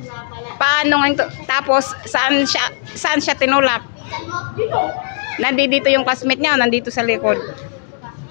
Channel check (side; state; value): right; silent; digital silence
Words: Paano nga tapos saan siya tinulak? Nandito yung classmate niya, nandito sa likod.